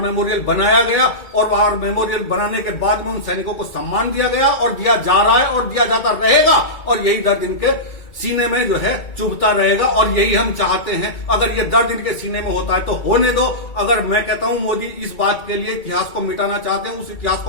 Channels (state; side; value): late; right; 2.3 ms